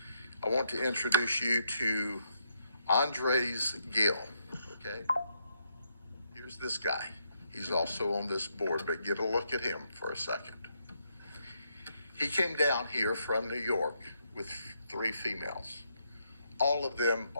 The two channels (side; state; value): both; inverted; correlation -0.77